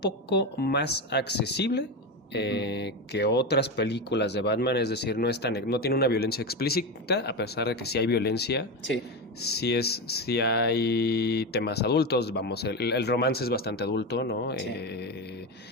poco más accesible que otras películas de Batman, es decir, no tiene una violencia explícita, a pesar de que sí hay violencia. Sí hay temas adultos, vamos, el romance es bastante adulto, ¿no? Sí.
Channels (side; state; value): both; normal; correlation 0.17